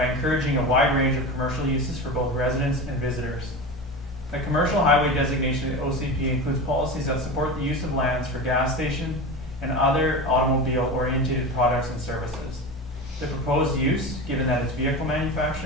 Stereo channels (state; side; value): normal; both; correlation 0.26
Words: encouraging a wide range of commercial uses for both residents and visitors. The commercial highway designation of the OCP includes policies that support the use of lands for gas station and other automobile-oriented products and services. The proposed use, given that it's vehicle